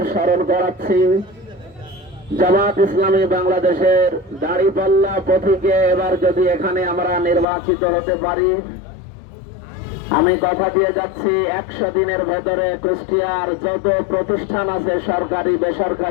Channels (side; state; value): right; drops out; at 7.5 s